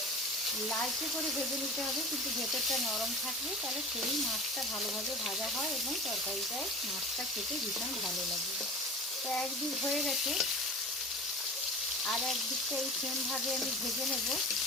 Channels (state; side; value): normal; both; correlation 0.36